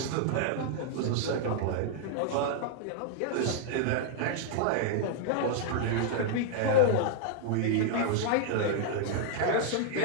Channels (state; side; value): different; both; correlation -0.01